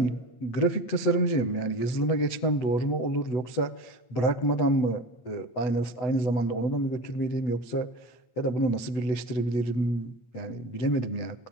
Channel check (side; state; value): right; late; 8.1 ms